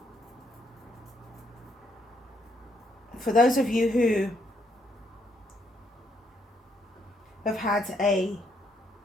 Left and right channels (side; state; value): both; normal; correlation 0.73